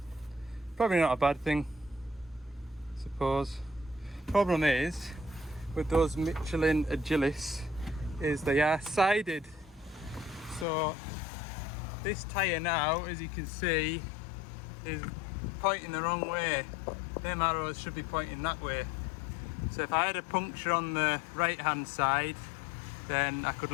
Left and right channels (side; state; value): right; drops out; at 10.7 s